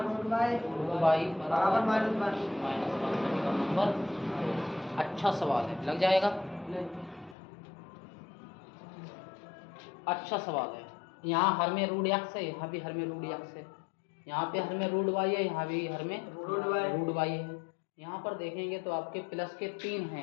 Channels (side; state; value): right; drops out; at 7.4 s